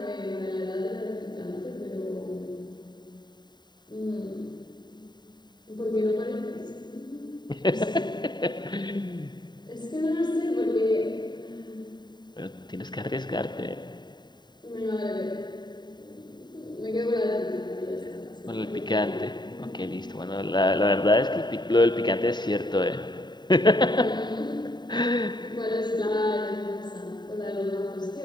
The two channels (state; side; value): late; right; 0.21 ms